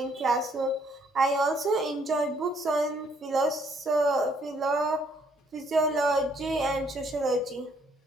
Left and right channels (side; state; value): both; normal; correlation 0.67